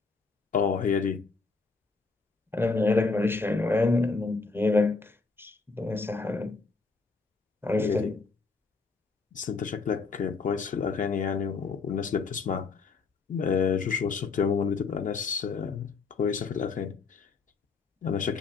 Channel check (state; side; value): quieter; right; 4.3 dB